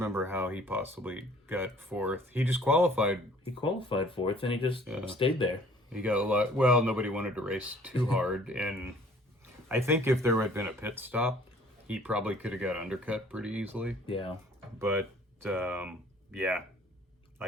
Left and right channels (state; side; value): normal; both; correlation 0.55